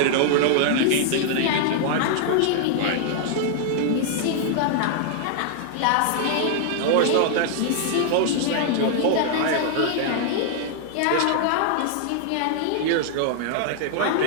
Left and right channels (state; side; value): different; both; correlation -0.01